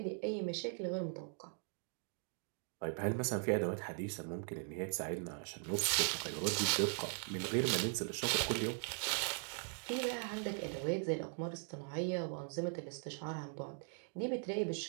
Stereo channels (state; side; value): silent; left; 51 dB below the other